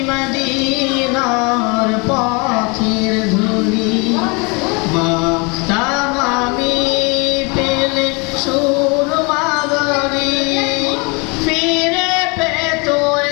মদিনার পথের ধুলি মাখতাম আমি পেলে সুরমা বালি ফিরে পেত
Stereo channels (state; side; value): quieter; right; 29.9 dB